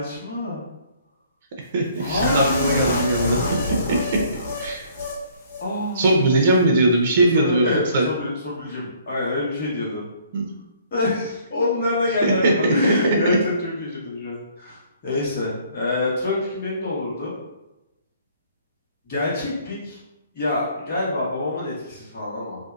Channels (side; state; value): both; inverted; correlation -0.60